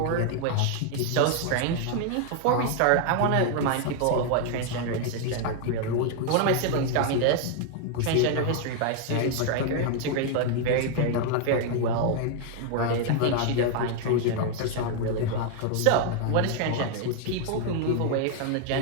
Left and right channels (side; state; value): both; different; correlation 0.00